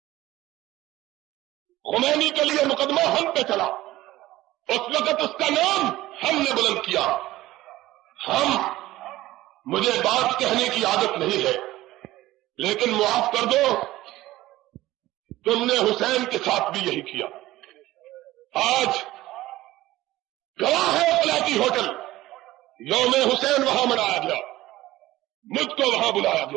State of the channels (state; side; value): quieter; left; 16.6 dB